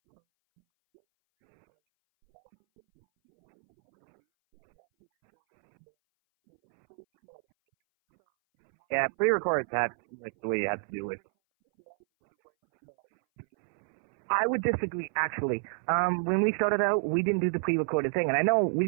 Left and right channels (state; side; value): silent; left; 59 dB below the other